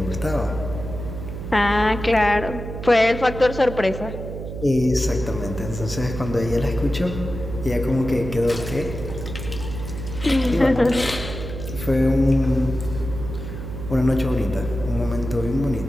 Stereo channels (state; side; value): noise; right; hum, 8 dB below the sound